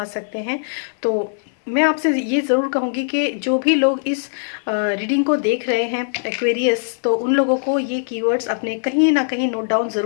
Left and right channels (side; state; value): right; silent; 66 dB below the other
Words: सकते हैं। तो मैं आपसे ये ज़रूर कहूँगी कि जो भी लोग इस रीडिंग को देख रहे हैं एक्वेरियस, तो उन लोगों को ये कीवर्ड्स अपने कहीं ना कहीं नोट डाउन